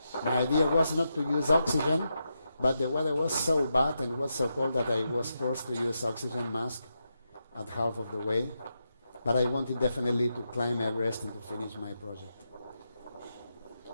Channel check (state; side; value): inverted; both; correlation -0.86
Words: My idea was not to use oxygen, but the weather was so bad and it was so cold that I was forced to use oxygen mask at half of the way. But I wanted definitely to climb Everest and to finish my project.